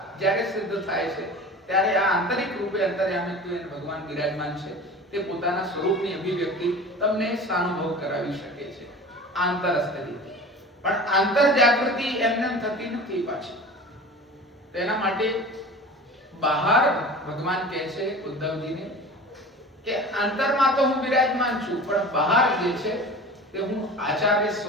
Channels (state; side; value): normal; both; correlation 0.37